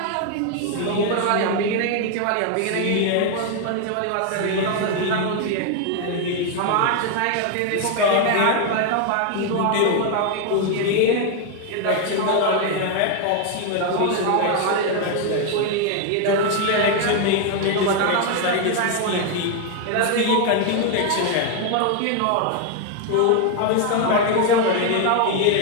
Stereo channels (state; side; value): different; both; correlation 0.01